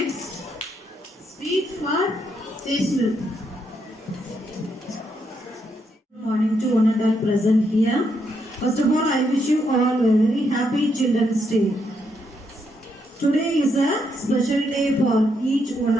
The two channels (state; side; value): normal; both; correlation 0.78